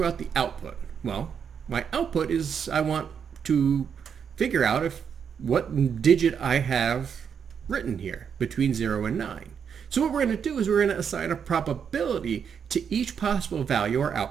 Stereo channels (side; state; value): left; quieter; 7.3 dB